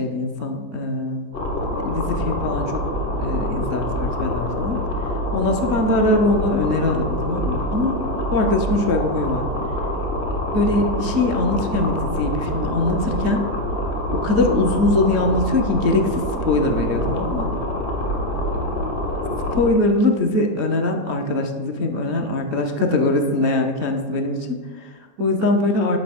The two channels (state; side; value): late; left; 19 ms